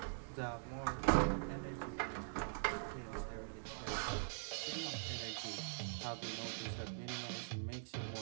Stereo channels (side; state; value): left; silent; digital silence